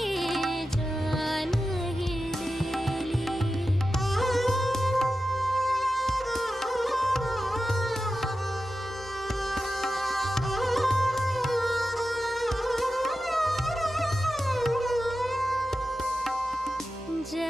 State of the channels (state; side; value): normal; both; correlation 0.92